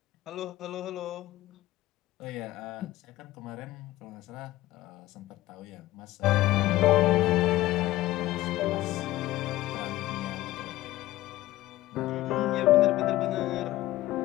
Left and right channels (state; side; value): quieter; right; 16.4 dB